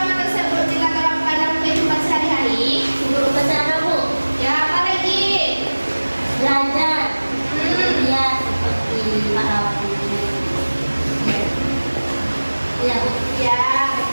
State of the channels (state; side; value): inverted; both; correlation -1.00